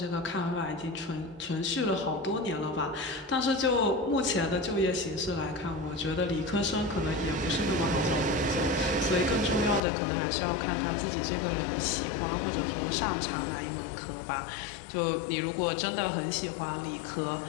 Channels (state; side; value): drops out; right; at 9.8 s